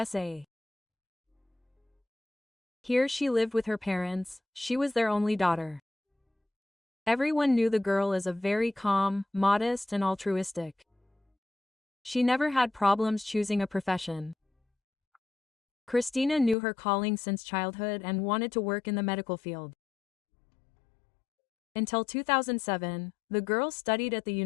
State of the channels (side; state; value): right; drops out; at 16.6 s